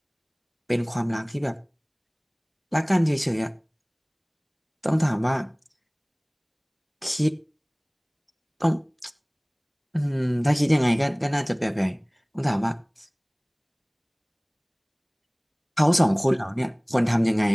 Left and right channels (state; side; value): identical; both; correlation 1.00